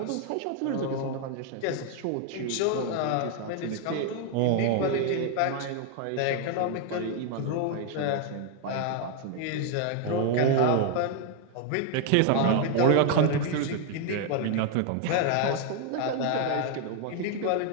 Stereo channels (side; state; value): both; different; correlation 0.01